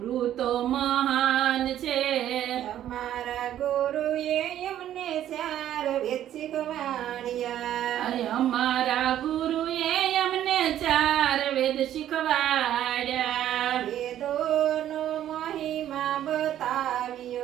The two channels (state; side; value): quieter; left; 11.6 dB